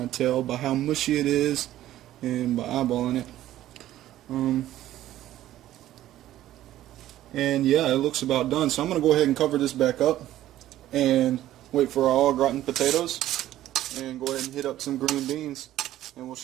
of tell by how mushy it is and by eyeballing it. And yeah, it looks about done. So I'm going to go ahead and cover this back up and wait for our au gratin potatoes and go ahead and hit up some green beans, and we'll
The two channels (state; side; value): quieter; left; 13.6 dB